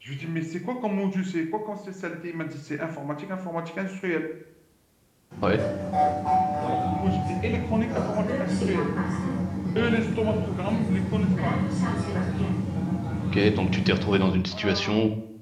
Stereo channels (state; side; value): identical; both; correlation 1.00